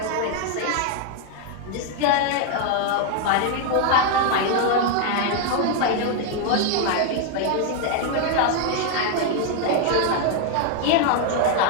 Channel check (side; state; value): both; different; correlation 0.00